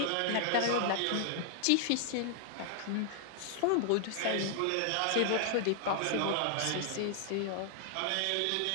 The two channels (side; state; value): both; different; correlation 0.00